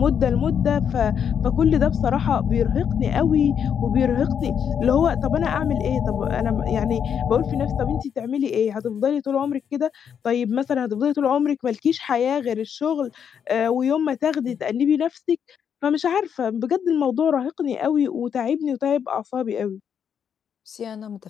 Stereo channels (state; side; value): quieter; right; 7.9 dB